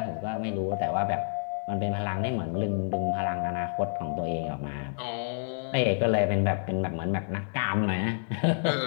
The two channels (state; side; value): silent; right; digital silence